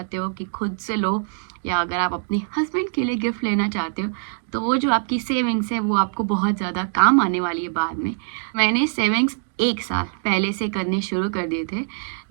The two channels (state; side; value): silent; left; digital silence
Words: हो कि खुद से लो, या अगर आप अपने हस्बैंड के लिए गिफ्ट लेना चाहते हो, तो वो जो आपकी सेविंग्स है वो आपको बहुत ज़्यादा काम आने वाली है बाद में। मैंने सेविंग्स 1 साल पहले से करने शुरू कर दिए थे,